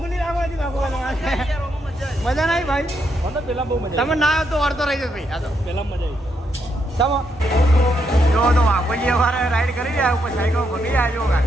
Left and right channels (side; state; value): both; normal; correlation 0.79